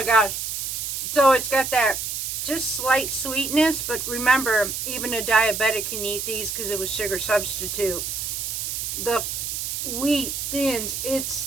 gosh. So it's got that just slight sweetness, but remember, even a diabetic can eat these because it was sugar substitute. The wheat thins, it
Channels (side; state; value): right; noise; hiss, 3 dB below the sound